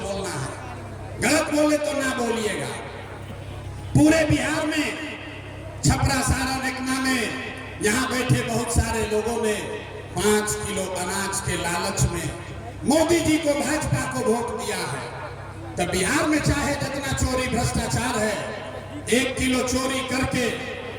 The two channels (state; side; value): identical; both; correlation 1.00